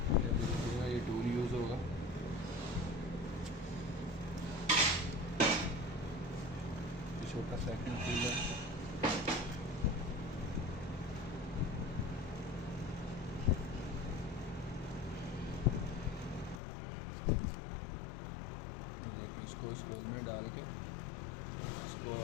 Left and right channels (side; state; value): right; drops out; at 16.6 s